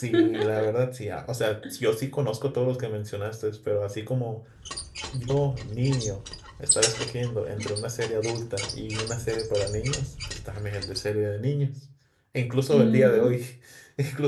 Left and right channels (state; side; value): identical; both; correlation 1.00